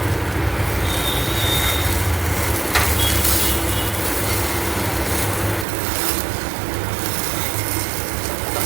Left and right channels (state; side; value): drops out; left; at 5.7 s